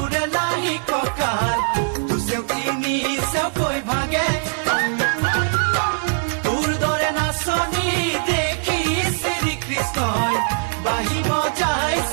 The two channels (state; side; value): silent; left; 64 dB below the other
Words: লাহি কঁকাল দুচেও তিনি চেওকৈ ভাগে তোৰ দৰে নাচনি দেখি শ্ৰীকৃষ্ণই বাঁহী